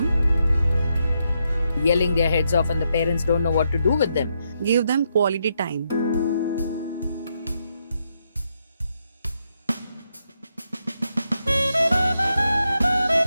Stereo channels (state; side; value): inverted; both; correlation -0.81